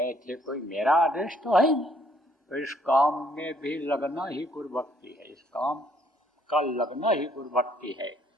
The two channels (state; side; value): normal; both; correlation 0.65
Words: थे, कोई मेरा आदेश तो है नहीं, तो इस काम में भी लगना ही गुरु भक्ति है, इस काम का लगना ही गुरु भक्ति है।